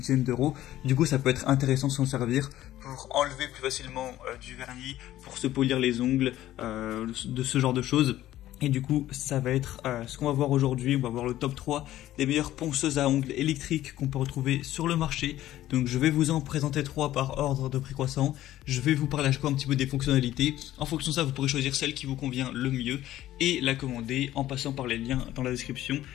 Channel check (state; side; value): quieter; right; 14.0 dB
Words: d'euros. Du coup ça peut être intéressant de s'en servir pour enlever plus facilement du vernis, pour se polir les ongles, de ce genre de choses. Et du coup, ça va être ce qu'on va voir aujourd'hui. On va voir le top 3 des meilleures ponceuses à ongles électriques qu'on peut retrouver sur le marché. Donc je vais vous en présenter 3 par ordre de prix croissant. Je vais vous parler à chaque fois un petit peu des fonctionnalités. En fonction de ça, vous pourrez choisir celle qui vous convient le mieux et la commander en passant par les liens dans la description